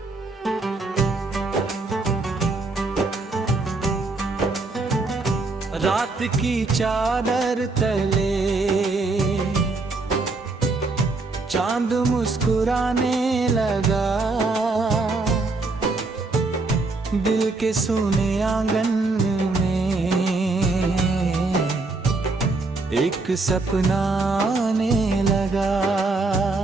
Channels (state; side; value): quieter; left; 3.5 dB